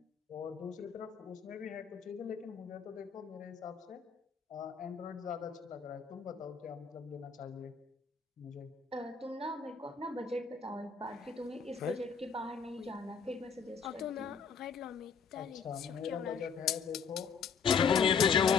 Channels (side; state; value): right; quieter; 6.2 dB